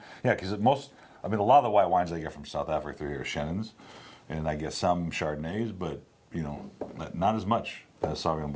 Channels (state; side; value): identical; both; correlation 1.00